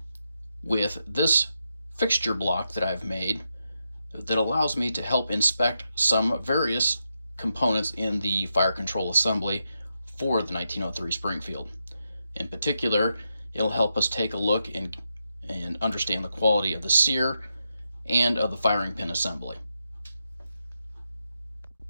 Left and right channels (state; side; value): inverted; both; correlation -0.85